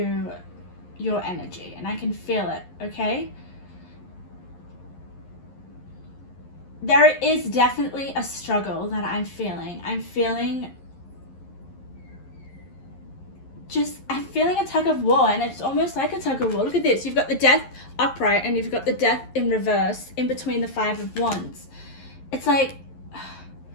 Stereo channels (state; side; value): late; right; 11 ms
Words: your energy, and I can feel it, okay? There is definitely a struggle that I'm feeling. I'm feeling a tug of war, and it's almost like a tug of war. Look at this. You've got the Death upright, and you've got the Death in reverse in between the Five of Wands. It's like,